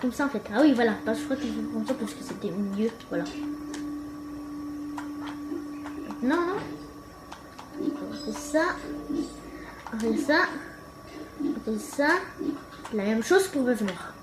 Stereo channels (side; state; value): both; identical; correlation 1.00